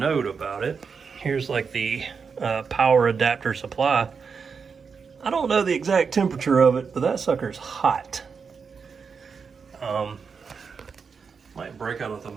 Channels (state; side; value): quieter; left; 5.7 dB